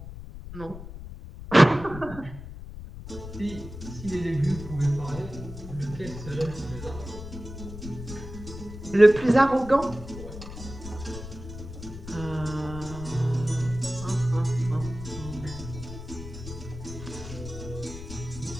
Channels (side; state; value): left; noise; rumble, 11 dB below the sound